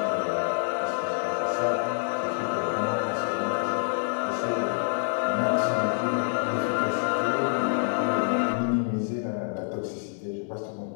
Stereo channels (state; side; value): silent; right; 60 dB below the other